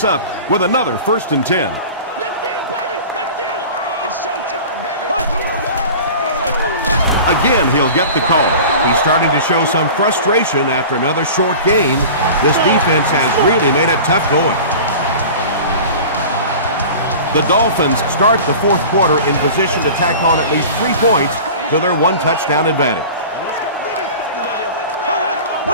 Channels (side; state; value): both; inverted; correlation -0.37